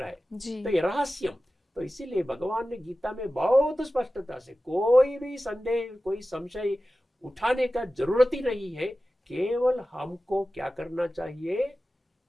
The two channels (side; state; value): both; normal; correlation 0.95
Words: है, तो ये रहस्यम। तो इसीलिए भगवान ने गीता में बहुत स्पष्टता से कोई भी संदेह, कोई संशय उठाने का जरूरत ही नहीं है। केवल हमको क्या करना चाहिए,